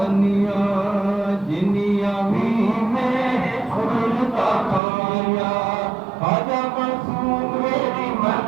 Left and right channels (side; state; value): left; drops out; at 4.8 s